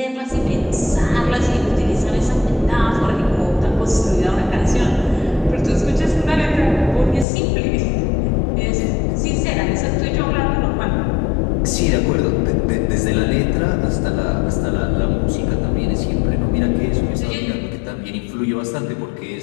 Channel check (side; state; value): right; drops out; at 7.2 s